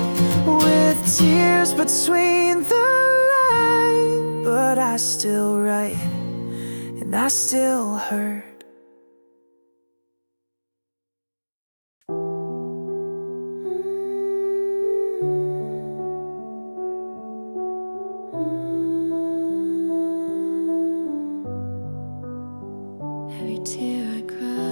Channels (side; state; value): both; inverted; correlation -1.00